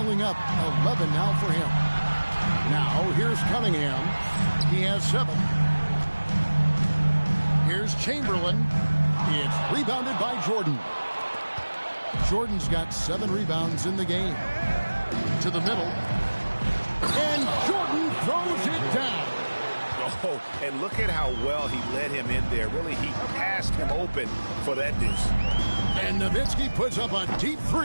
up, 11 now for him. Now, here's Cunningham. He has 7. Here's Chamberlain. It's rebounded by Jordan. Jordan's got 7 rebounds in the game. To the middle. And Jordan throws it down. Oh, and look at how well he led him in there. Really, he passed him open for that deuce. And Nowitzki puts up a deep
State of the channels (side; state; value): both; inverted; correlation -1.00